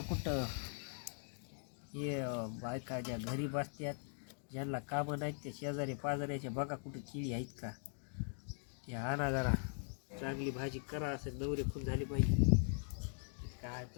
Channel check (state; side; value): silent; right; 50 dB below the other